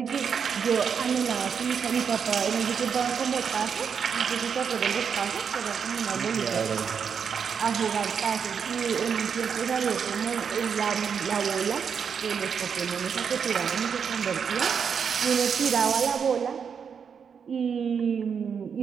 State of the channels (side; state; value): left; quieter; 6.8 dB